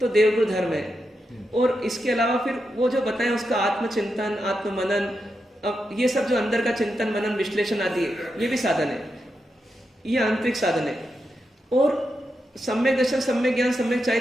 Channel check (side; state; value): both; normal; correlation 0.86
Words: देवगुरु धर्म है। और इसके अलावा फिर वो जो बताएं उसका आत्मचिंतन, आत्म मनन, अब ये सब जो अंदर का चिंतन मनन विश्लेषण आदि है, ये भी साधन है, ये आंतरिक साधन है। और सम्यक दर्शन, सम्यक ज्ञान, सम्यक